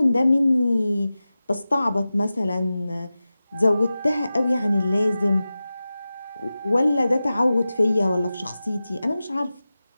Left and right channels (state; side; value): inverted; both; correlation -0.95